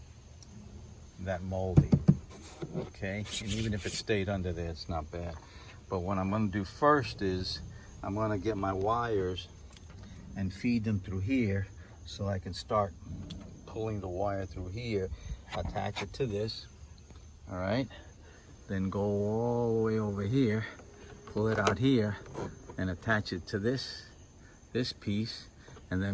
that molding. Okay, and even if it stayed under there, it's not bad. But what I'm going to do first is I'm going to get my wires and feed them through here so I can start pulling the wire through here, attach it to this, all right, then go all the way over here, pull it out here, and attach it to this piece, and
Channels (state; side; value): identical; both; correlation 1.00